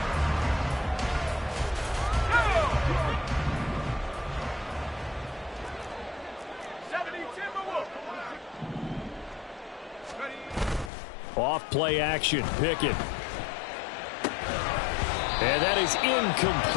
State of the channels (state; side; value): drops out; right; at 10.9 s